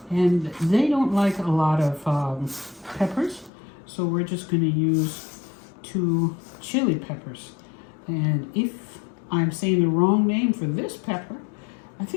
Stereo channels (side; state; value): right; drops out; at 3.5 s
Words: And they don't like a lot of peppers, so we're just going to use 2 chili peppers. And if I'm saying the wrong name for this pepper, I